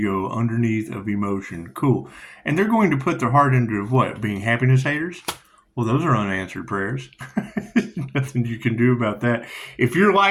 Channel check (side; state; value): both; identical; correlation 1.00